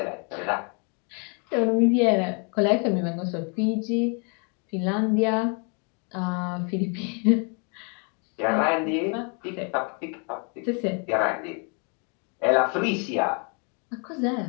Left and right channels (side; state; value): right; quieter; 37.0 dB